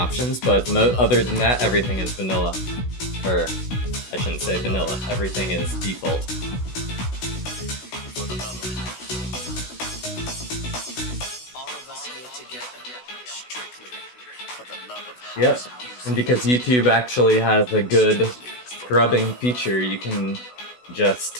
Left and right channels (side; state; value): right; late; 16 ms